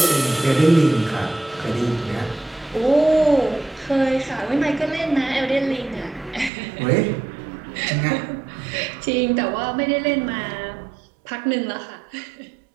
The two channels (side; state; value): left; drops out; at 6.5 s